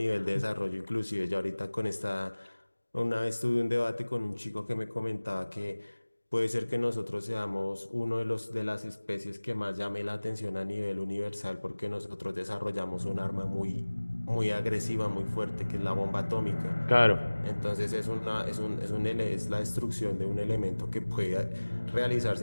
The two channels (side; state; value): both; inverted; correlation -1.00